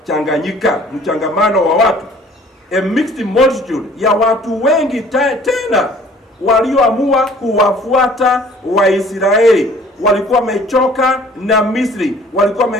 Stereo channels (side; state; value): both; normal; correlation 0.53